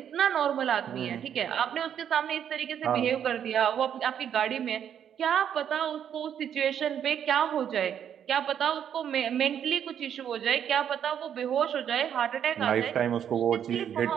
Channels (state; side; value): quieter; left; 9.0 dB